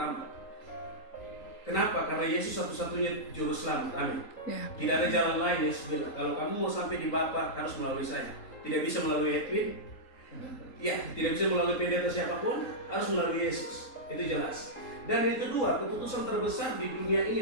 Kenapa? Karena Yesus satu-satunya Juru Selamat. Amin. Ya. Tidak ada jalan lain. Yesus bilang, kalau kamu mau sampai di Bapa harus melalui saya. Tidak bisa melalui Edwin. Ya, tidak bisa melalui pendeta siapapun, harus melalui Yesus. Itu jelas. Dan yang kedua, keputusan terbesar di dunia ini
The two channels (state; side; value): late; right; 3.8 ms